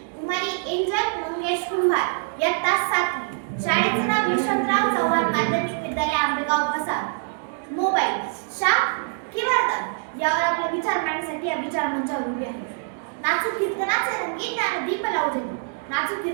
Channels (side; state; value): left; silent; digital silence